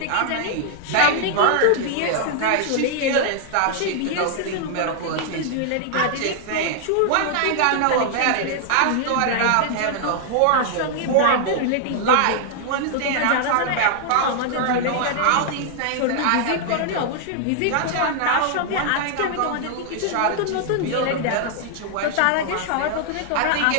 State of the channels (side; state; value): both; different; correlation 0.00